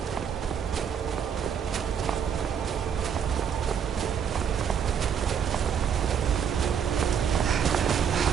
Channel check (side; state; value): left; quieter; 7.8 dB